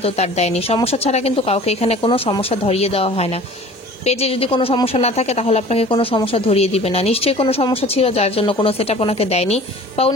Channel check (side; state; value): both; normal; correlation 0.45